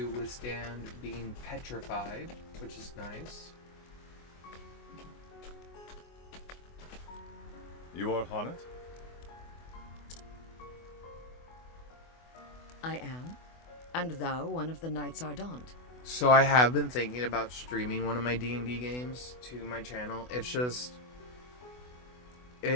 withstand being petrified, which is nice. You are Haunted? I am. And thou one of the Knights Ardent. So I have been thinking about streaming one of my D&D games to my channel. It's just...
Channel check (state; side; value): late; right; 24 ms